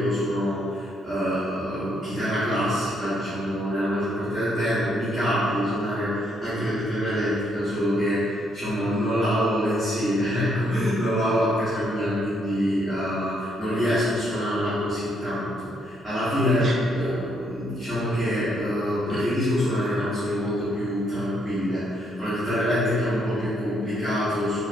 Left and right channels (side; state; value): both; normal; correlation 0.73